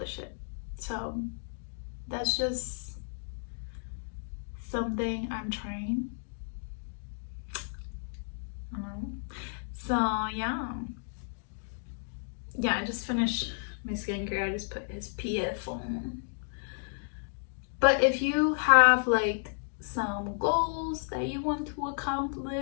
it. So that's just something I'm trying. So yeah, I just finished my skincare. I just put SPF on. But if you have like some goals that you want to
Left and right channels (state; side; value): silent; right; digital silence